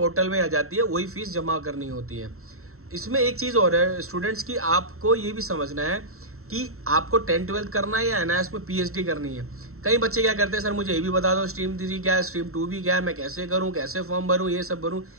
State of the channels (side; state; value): left; late; 0.63 ms